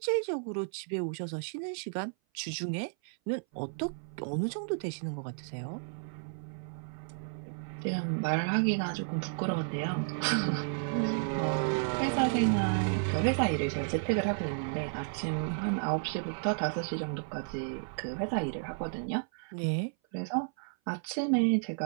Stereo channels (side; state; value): left; silent; 56 dB below the other